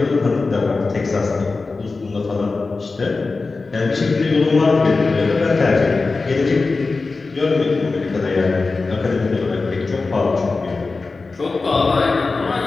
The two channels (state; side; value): quieter; right; 3.9 dB